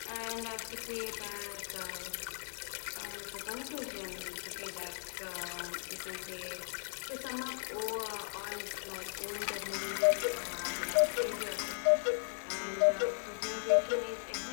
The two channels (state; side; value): silent; right; 53 dB below the other